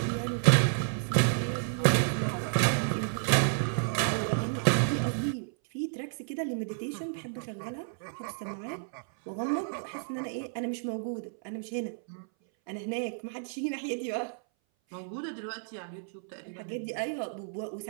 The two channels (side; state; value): left; silent; 57 dB below the other